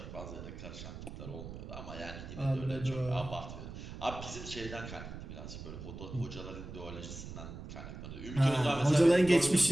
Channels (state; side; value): noise; right; rumble, 11 dB below the sound